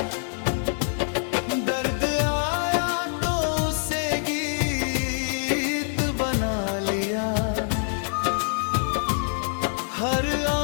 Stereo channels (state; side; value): silent; right; 62 dB below the other